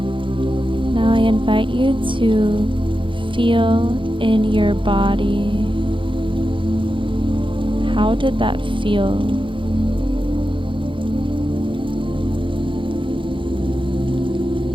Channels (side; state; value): left; late; 0.24 ms